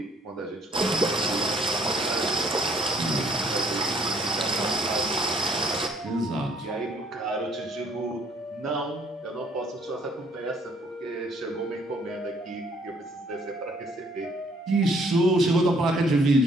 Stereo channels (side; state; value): both; normal; correlation 0.63